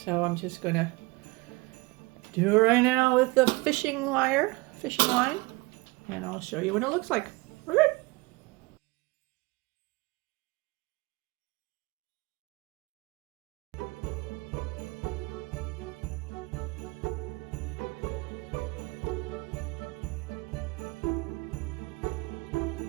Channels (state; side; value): quieter; left; 24.3 dB